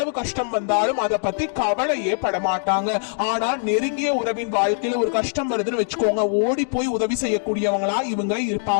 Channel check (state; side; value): silent; right; digital silence